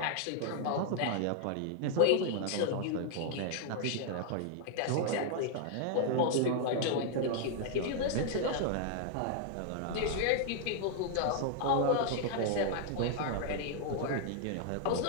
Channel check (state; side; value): different; both; correlation 0.00